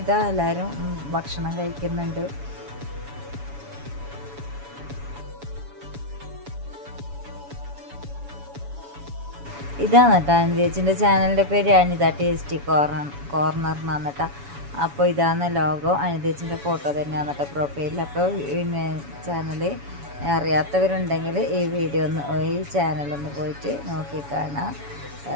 ഇതാ എല്ലാവരും ഭക്ഷണം കഴിക്കുന്നുണ്ട്. ഇതാണ് കേട്ടോ അനുജേച്ചിൻ്റെ ചാനലിൻ്റെ പേര് അനിത ടേസ്റ്റി കോർണർ എന്നാണ് കേട്ടോ. അപ്പോൾ ഇതാണ് ലോഗോ. അനുജേച്ചിൻ്റെ ഫോട്ടോ തന്നെയാണ് കേട്ടോ പ്രൊഫൈലിൽ. അപ്പോൾ പിന്നെ ചാനൽ അറിയാത്തവരുണ്ടെങ്കിൽ ഈ ചാനലൊന്ന് പോയിട്ട് നോക്കി കാണാം,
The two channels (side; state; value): left; late; 7.1 ms